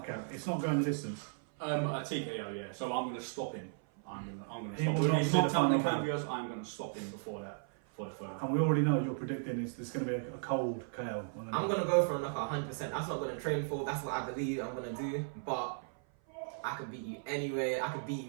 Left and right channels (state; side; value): silent; left; 54 dB below the other